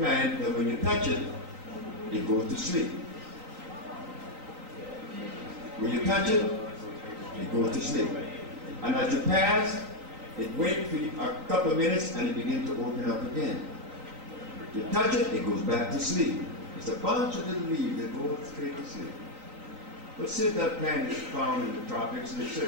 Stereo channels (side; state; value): left; late; 3.9 ms